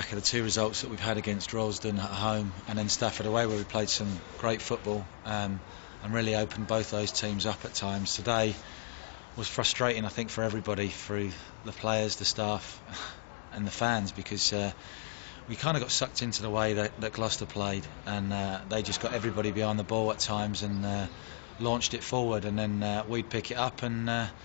of the two results that we've had against Royston at home and then Stafford away, where we played some great football and really opened both those teams up at times. Today was frustrating, I think, for everybody, through the players, the staff and the fans, because we kind of got sucked into the way that Gloucester played, and they just got everybody behind the ball at times and launched it forward, and then we'd pick it up and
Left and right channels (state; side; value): silent; right; digital silence